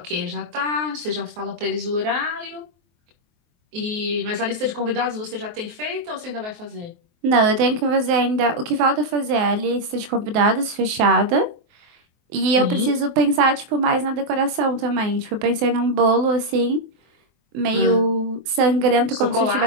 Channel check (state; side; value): late; left; 23 ms